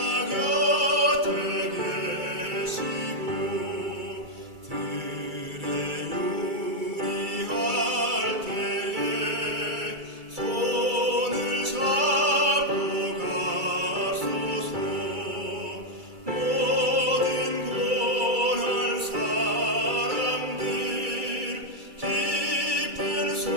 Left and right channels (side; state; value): left; late; 2.3 ms